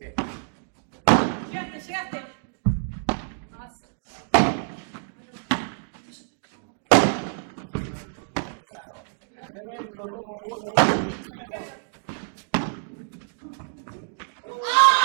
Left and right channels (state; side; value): silent; left; digital silence